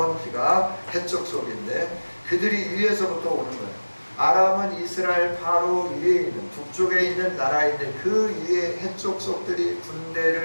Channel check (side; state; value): both; inverted; correlation -1.00